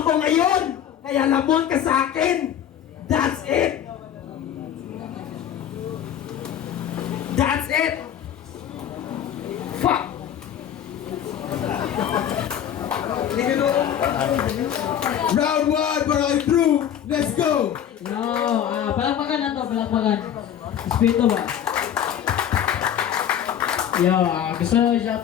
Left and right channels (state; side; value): quieter; right; 9.7 dB